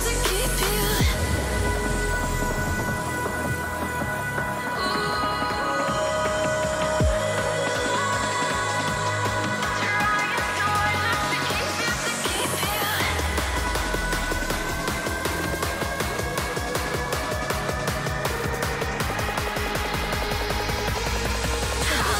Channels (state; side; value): identical; both; correlation 1.00